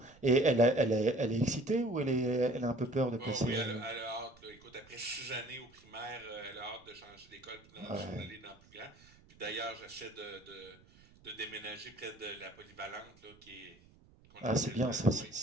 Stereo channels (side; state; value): right; noise; rumble, 26 dB below the sound